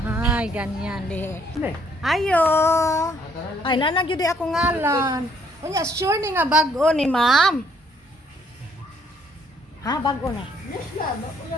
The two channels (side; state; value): both; normal; correlation 0.67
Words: Ay, ganyan. Ayo! Ay, nanagyo di ako ngalan. Unya, sure ni nga bago ni ma'am. Ha, bago na?